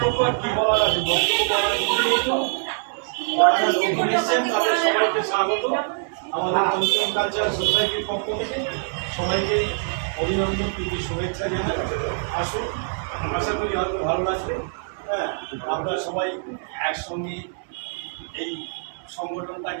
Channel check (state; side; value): silent; left; digital silence